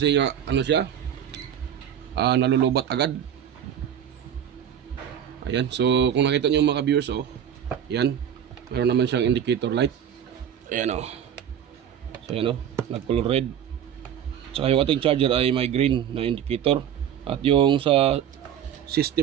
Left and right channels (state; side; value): quieter; left; 9.4 dB